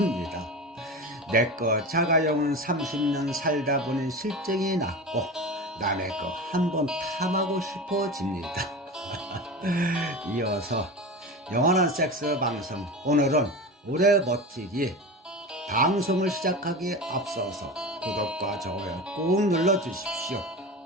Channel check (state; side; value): normal; both; correlation 0.28